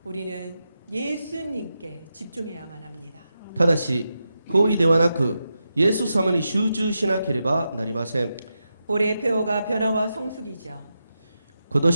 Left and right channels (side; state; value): both; inverted; correlation -0.88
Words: 우리는 예수님께 집중해야만 합니다. ただし行為ではなくイエス様に集中しなければなりません。 올해 표어가 변화와 성숙이죠. 今